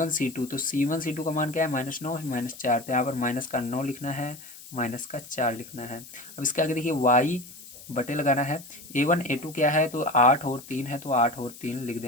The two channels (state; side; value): noise; left; hiss, 17 dB below the sound